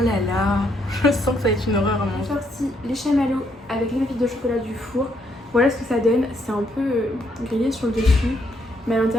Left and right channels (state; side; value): normal; both; correlation 0.73